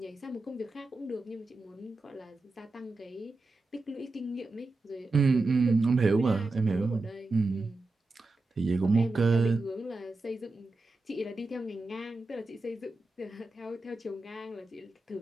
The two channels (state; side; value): quieter; left; 3.2 dB